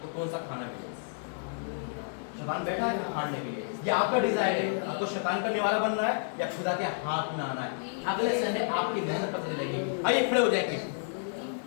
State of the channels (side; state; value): right; silent; digital silence